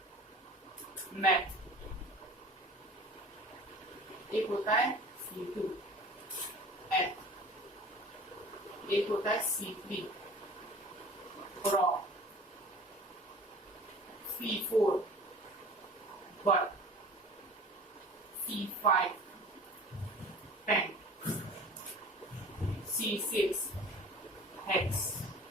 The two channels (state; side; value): normal; both; correlation 0.43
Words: मैथ, एक होता है C2 एथ, एक होता है C3 pro, C4 but, C5 tent, C6 hex,